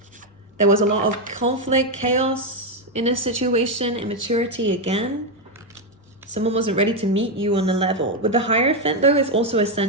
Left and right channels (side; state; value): both; normal; correlation 0.05